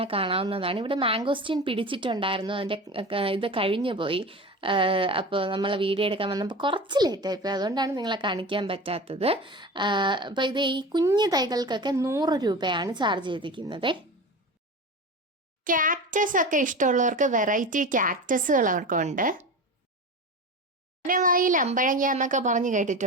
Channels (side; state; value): both; normal; correlation 0.30